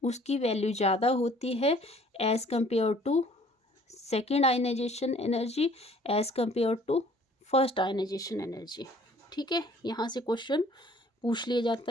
उसकी वैल्यू ज़्यादा होती है as compare to second ionization energy, as compare to first ionization energy. ठीक है, यहाँ से क्वेश्चन पूछ लिया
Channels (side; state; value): both; normal; correlation 0.55